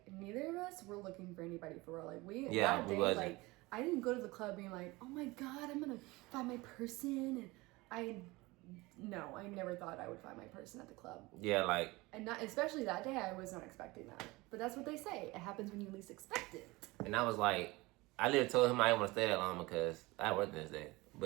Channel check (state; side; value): quieter; left; 22.2 dB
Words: neither of us were looking for anybody for real. Like, we wasn't. Like, I didn't go to the club being like, oh my god, I'm gonna find my person, and No, I never thought I would find my person at the club. Yeah, like... And not, especially that day, I was not expecting that. But that's what they say. It happens when you least expect it. And I was like... I literally told him I didn't want to stay that long because I worked this day.